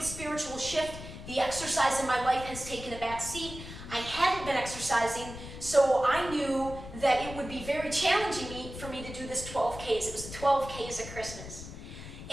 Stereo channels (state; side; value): noise; left; rumble, 11 dB below the sound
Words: spiritual shift, the exercise in my life has taken a back seat. I hadn't been exercising, so I knew that it would be very challenging for me to do this 12Ks. It was the 12Ks at Christmas.